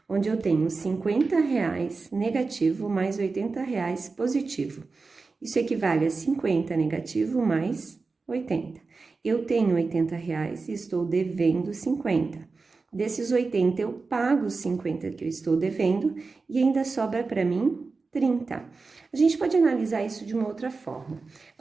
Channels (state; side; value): quieter; left; 4.1 dB